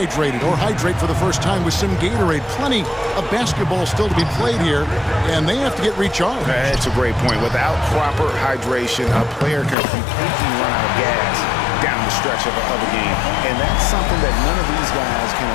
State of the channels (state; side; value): drops out; right; at 9.8 s